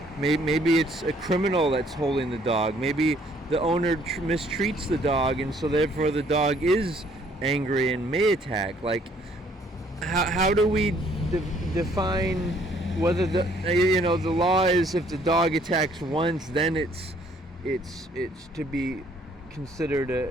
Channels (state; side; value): normal; both; correlation 0.63